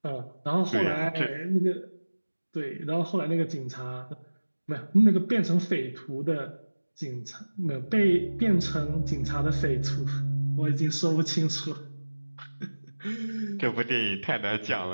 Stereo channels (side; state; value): both; inverted; correlation -1.00